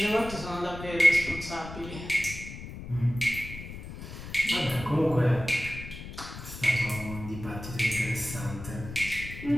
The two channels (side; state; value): left; noise; rumble, 11 dB below the sound